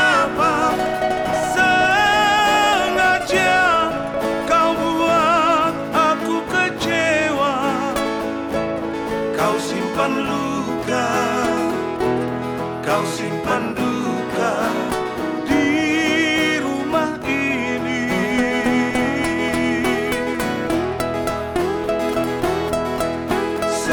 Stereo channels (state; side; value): identical; both; correlation 1.00